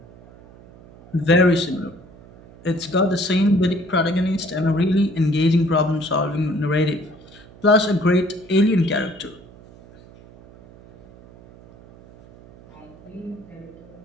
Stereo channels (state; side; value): noise; right; hum, 23 dB below the sound